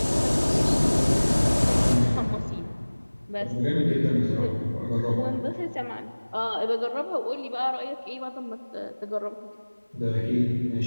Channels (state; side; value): inverted; both; correlation -1.00